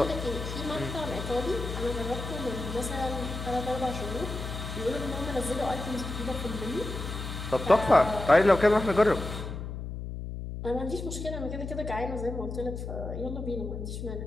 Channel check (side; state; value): left; noise; hum, 6 dB below the sound